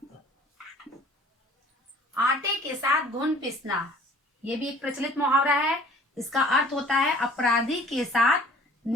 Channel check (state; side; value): normal; both; correlation 0.51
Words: आटे के साथ घुन पीसना, ये भी एक प्रचलित मुहावरा है। इसका अर्थ होता है अपराधी के साथ